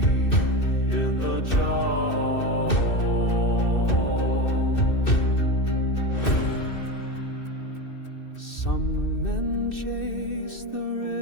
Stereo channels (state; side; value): late; right; 2.6 ms